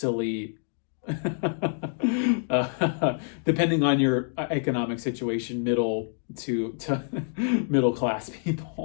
depending on your economic situation, middle to middle class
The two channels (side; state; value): right; silent; digital silence